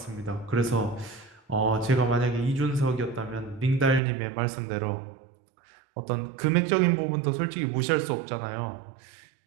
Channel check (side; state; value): left; drops out; at 4.0 s